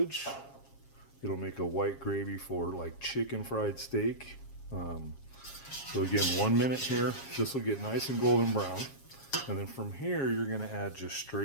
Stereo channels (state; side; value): late; right; 7.4 ms